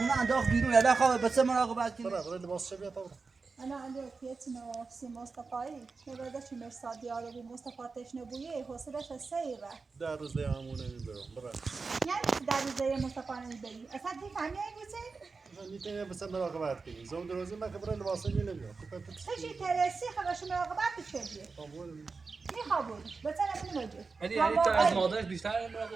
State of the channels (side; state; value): left; quieter; 4.4 dB